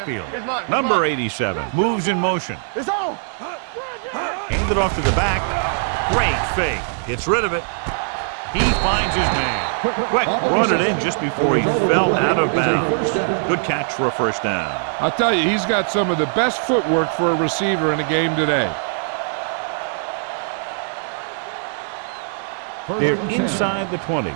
It's mine. It's Number mine. 87 moves in motion. It's on. Handed off to the back. Great fake. Gets rid of it. He finds his man. Quick, brought it in just before he fell out of bounds. Good catch for a first down. I'll tell you, he's got some of the best footwork for a receiver in the game today. They're inside the 20.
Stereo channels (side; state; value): left; silent; digital silence